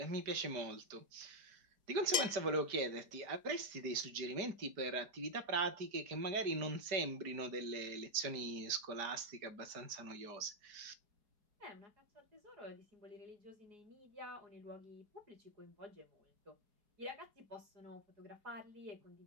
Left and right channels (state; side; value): late; left; 5.1 ms